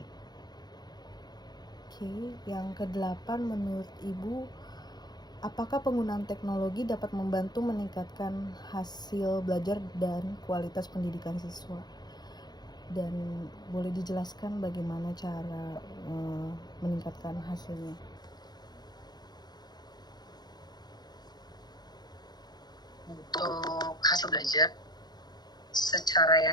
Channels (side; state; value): right; late; 0.20 ms